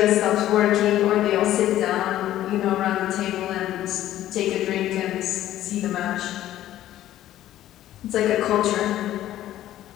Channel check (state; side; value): quieter; right; 13.2 dB